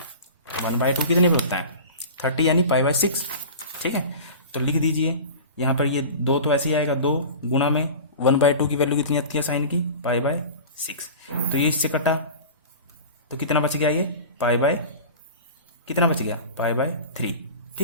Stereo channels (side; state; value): both; inverted; correlation -0.35